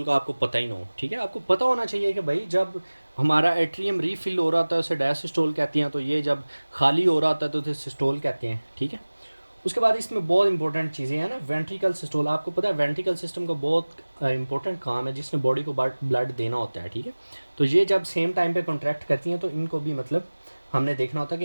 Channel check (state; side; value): inverted; both; correlation -1.00